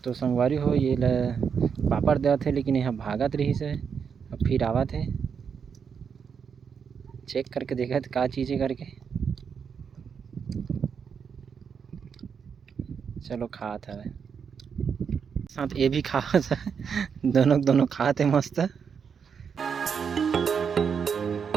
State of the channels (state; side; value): quieter; left; 6.6 dB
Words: तो संगवारी हो ये पापड़ देवत है, लेकिन यहाँ भागत रही से अब फिर आवत है। चेक करके देखा का चीज़ है करके। चलो खात है साथ ये भी खात है। दोनों खाते मस्त।